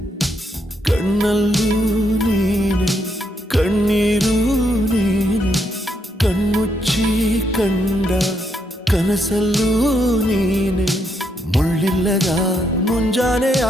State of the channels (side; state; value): both; normal; correlation 0.77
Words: ಕಣ್ಣಲ್ಲೂ ನೀನೆ ಕಣ್ಣೀರು ನೀನೆ ಕಣ್ಮುಚ್ಚಿ ಕಂಡ ಕನಸಲ್ಲೂ ನೀನೆ ಮುಳ್ಳಿಲ್ಲದ ಮುಂಜಾನೆಯ